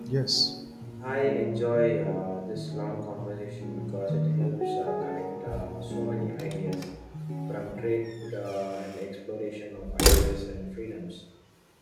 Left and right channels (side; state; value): both; identical; correlation 1.00